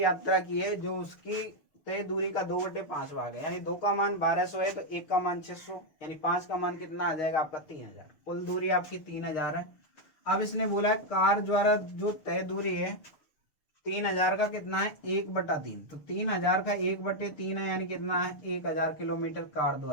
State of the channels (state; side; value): late; right; 6.7 ms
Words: यात्रा की है, जो उसकी तय दूरी का 2/5 भाग है, यानी 2 का मान 1200 है तो 1 का मान 600, यानी 5 का मान कितना आ जाएगा आपका 3000। कुल दूरी आपकी 3000 है। अब इसने बोला है कार द्वारा जो तय दूरी है 3000 का कितना है 1/3, तो 3000 का 1/3 है, यानी कितना है 1000 किलोमीटर कार